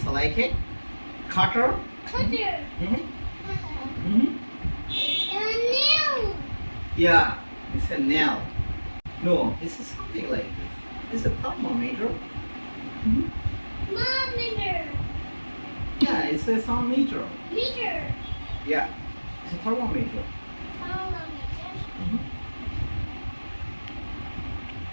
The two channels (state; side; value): inverted; both; correlation -1.00